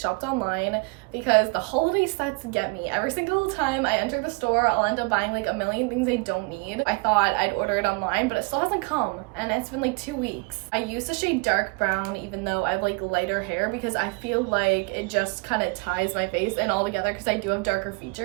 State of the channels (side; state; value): left; quieter; 30.3 dB